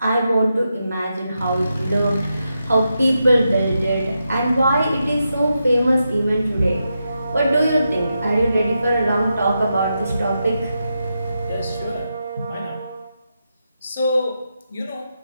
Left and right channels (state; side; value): inverted; both; correlation -0.86